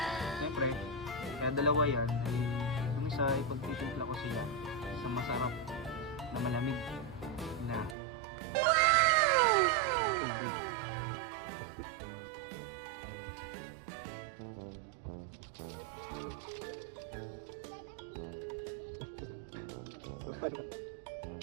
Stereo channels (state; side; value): drops out; left; at 8.0 s